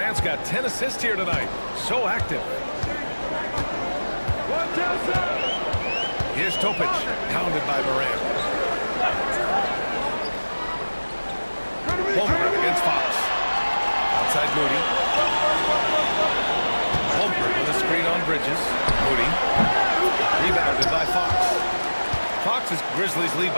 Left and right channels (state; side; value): inverted; both; correlation -1.00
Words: got 10 assists here tonight. So active. Here's Topic, pounded by Moran. Holmgren against Fox. Outside Moody. Holmgren with a screen on Bridges. Moody. Rebounded by Fox. Fox's Grizzlies lead